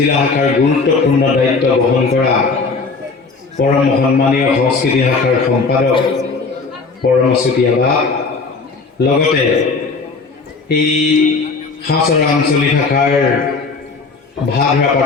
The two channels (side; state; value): right; quieter; 4.3 dB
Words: শাখাৰ গুৰুত্বপূৰ্ণ দায়িত্ব বহন কৰা পৰম সন্মানীয় সংস্কৃতি শাখাৰ সম্পাদক পৰম চুতীয়া লগতে এই হাছৰা আঞ্চলিক শাখাৰ ভাগৰা